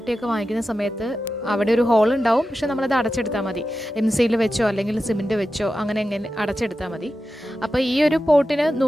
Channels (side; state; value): both; normal; correlation 0.92